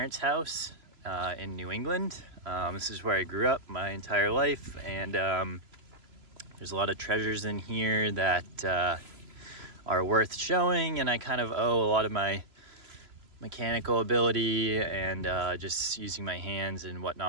house in New England. This is where I grew up my entire life, and there's a lot of treasures in here that are worth showing, and I kind of owe a lot of my mechanical ability and just using my hands and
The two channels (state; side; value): late; left; 3.0 ms